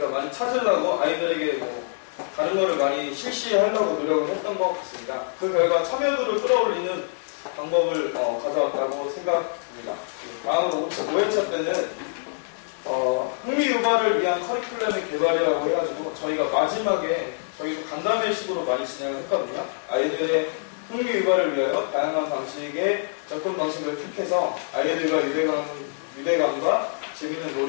많이 찾으려고 아이들에게 다른 거를 많이 실시하려고 노력을 했던 것 같습니다. 그 결과 참여도를 끌어올리는 방법을 가져왔다고 생각합니다. 다음으로 5회차 때는 흥미 유발을 위한 커리큘럼의 개발이라고 해가지고 저희가 마지막에 저희도 간담회식으로 많이 진행을 했거든요. 아이들의 흥미 유발을 위하여 다양한 방식의 접근 방식을 택해서 아이들과 유대감과 재미있는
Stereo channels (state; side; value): silent; right; 62 dB below the other